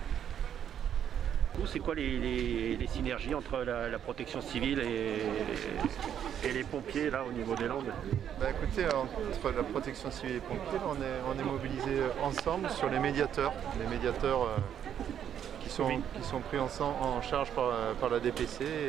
C'est quoi les synergies entre la protection civile et les pompiers là au niveau des Landes? Écoutez, entre la protection civile et les pompiers, on est mobilisés ensemble sur les médiateurs qui sont pris en charge par la DPC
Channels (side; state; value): left; quieter; 9.3 dB